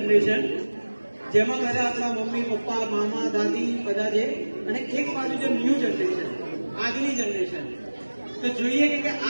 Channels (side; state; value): both; inverted; correlation -1.00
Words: જેમાં બધા આપણા મમ્મી પપ્પા મામા દાદી બધા છે, અને એક બાજુ છે ન્યૂ જનરેશન, આજની જનરેશન. તો જોઈએ કે